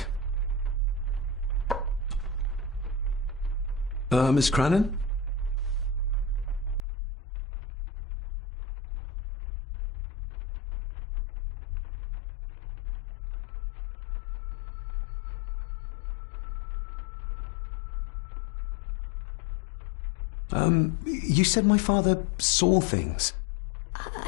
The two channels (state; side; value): drops out; right; at 6.8 s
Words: Miss Crannan? You said my father saw things.